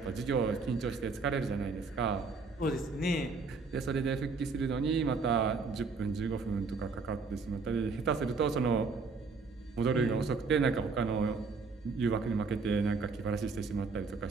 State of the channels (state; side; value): quieter; left; 4.4 dB